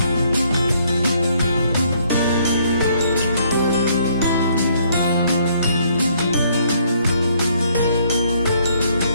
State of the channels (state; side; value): inverted; both; correlation -0.67